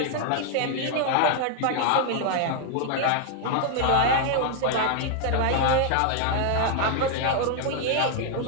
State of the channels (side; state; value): both; different; correlation 0.00